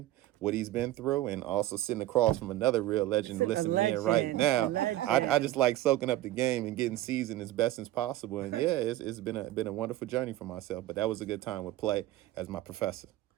what he's been through, and also sitting across from another real legend listening in right now. I just like soaking up the game and getting seasoned as best as possible. And yeah, it's been a wonderful journey for myself. But that was a good time with Play as my professor.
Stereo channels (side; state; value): left; quieter; 15.0 dB